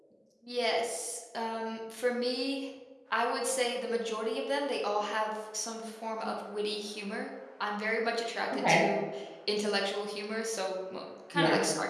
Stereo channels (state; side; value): identical; both; correlation 1.00